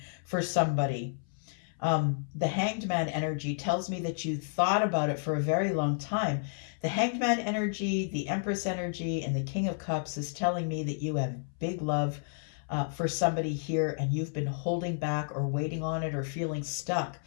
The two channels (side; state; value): right; silent; 57 dB below the other